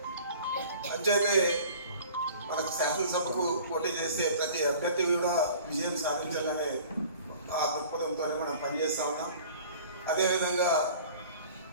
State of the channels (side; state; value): both; inverted; correlation -0.46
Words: అంచేతే మనకు శాసనసభకు పోటీ చేస్తే ప్రతి అభ్యర్థి కూడా విజయం సాధించాలనే ఆ దృక్పథంతోనే మనం పనిచేస్తా ఉన్నాం. అదేవిధంగా